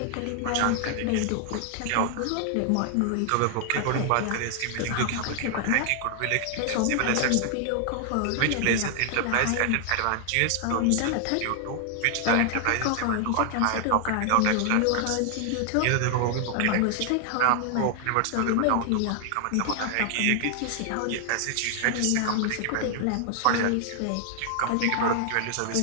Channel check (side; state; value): both; different; correlation 0.00